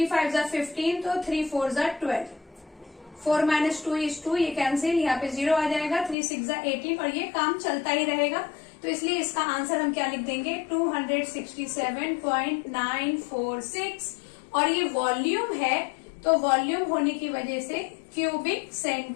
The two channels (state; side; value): drops out; right; at 6.2 s